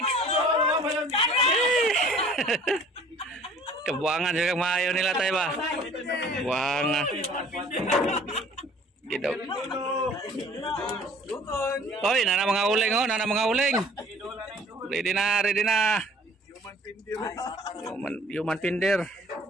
Kebuangan juga maayo nila tayo ba? Buanga. Gitu. Oy, nana mga uling oh, nana mga uling. Ready na. Human pinder.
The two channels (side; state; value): both; normal; correlation 0.52